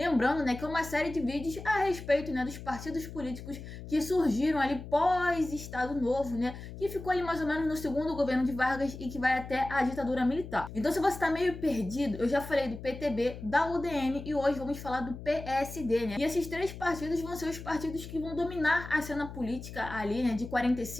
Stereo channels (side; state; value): left; noise; hum, 12 dB below the sound